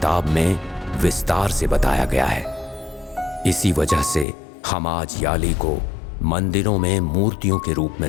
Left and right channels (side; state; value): right; drops out; at 4.2 s